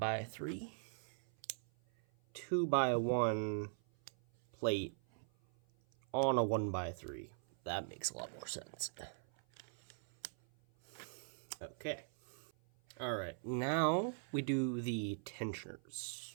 3, 2 by 1 plate on a 1 by 3. That makes a lot more sense. Okay. All right, now we do the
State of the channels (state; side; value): silent; left; 51 dB below the other